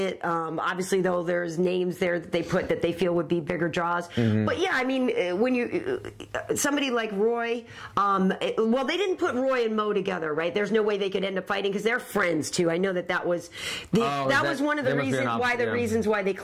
Obviously, though, there's names there that they put that they feel would be bigger draws. But yeah, I mean, when you somebody like Roy, well, they didn't put Roy and Mo together, right? There's no way they could end up fighting because they're friends too. I know that was was one of the reasons why they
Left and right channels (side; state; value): both; identical; correlation 1.00